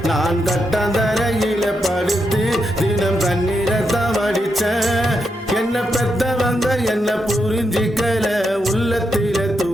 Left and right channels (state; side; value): normal; both; correlation 0.83